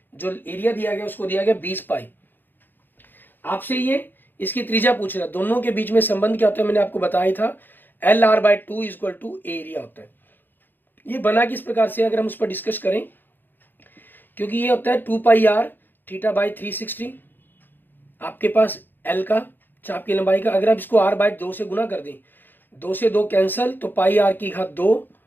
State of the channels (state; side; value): late; right; 0.093 ms